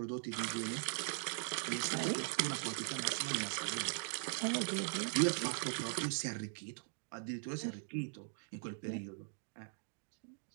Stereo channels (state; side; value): silent; left; digital silence